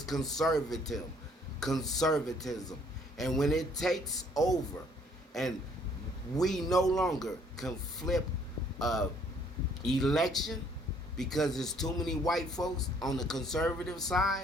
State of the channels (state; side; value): normal; both; correlation 0.62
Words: conservatism. And when it takes over and we no longer can flip a election because there's too many white folks on the conservative